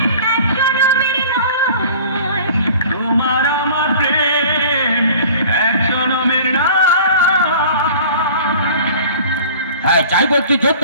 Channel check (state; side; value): inverted; both; correlation -0.45